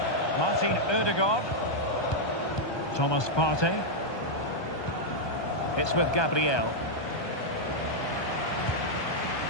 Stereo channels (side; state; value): right; late; 1.2 ms